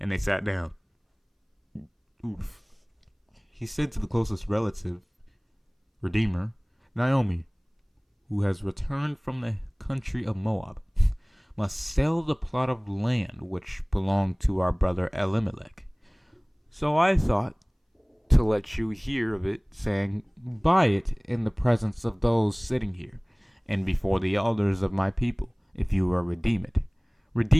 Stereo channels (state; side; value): identical; both; correlation 1.00